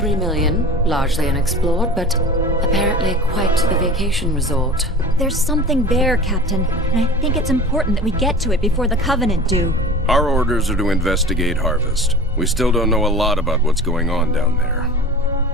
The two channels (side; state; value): both; normal; correlation 0.37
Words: million, largely unexplored, but apparently quite the vacation resort. There's something there, Captain, and I think it's important that we get to it before the Covenant do. Our orders are to investigate Harvest. We still don't know a lot about what's going on down there.